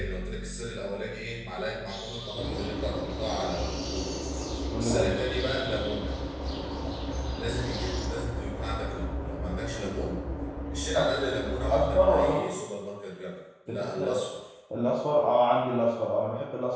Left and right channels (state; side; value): identical; both; correlation 1.00